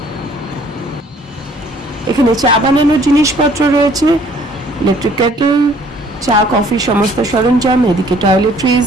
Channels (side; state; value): both; normal; correlation 0.59